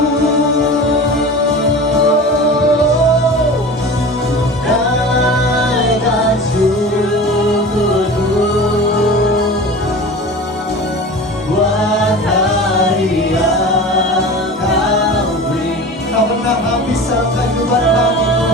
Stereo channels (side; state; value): both; normal; correlation 0.35